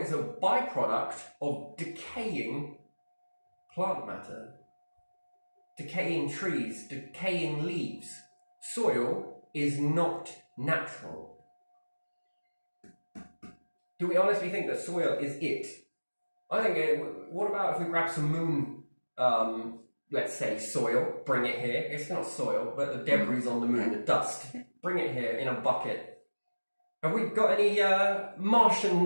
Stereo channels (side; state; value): both; inverted; correlation -1.00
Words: a byproduct of decaying plant matter. Decaying trees, decaying leaves. Soil is not natural. Do we honestly think that soil is it? I think, what about if we grab some moon, let's say soil, bring it here. It's not soil, but the debris on the moon, the dust. Bring it here in a bucket. Have we got any